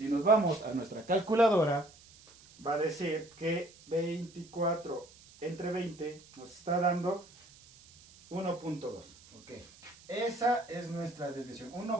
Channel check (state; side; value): noise; right; hiss, 24 dB below the sound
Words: nos vamos a nuestra calculadora, va a decir que 24 entre 20 nos está dando 1.2. Ok, esa es nuestra desviación,